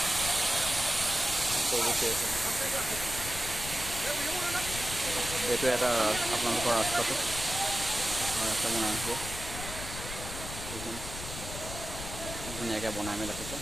এইটো এটা আপোনালোকৰ ৰাস্তাটো ৰাস্তা বনাই হ'ব ধুনীয়াকৈ বনাই মেলি ৰাখিছে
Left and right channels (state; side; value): noise; left; rumble, 9 dB below the sound